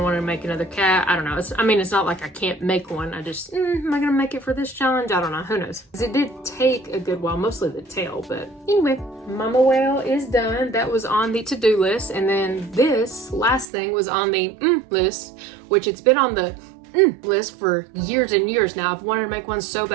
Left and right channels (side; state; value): left; drops out; at 13.7 s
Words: want to make another cat. I don't know. I mean, it's not like I can't make one. I just, am I gonna make it for this challenge? I don't know. Who knows? Because it did take a good while, mostly the tail. But anyway, Mama Whale is done. That was on the to-do list. And then this last thing was on the list, which it's been on the list for years and years now. I've wanted to make one so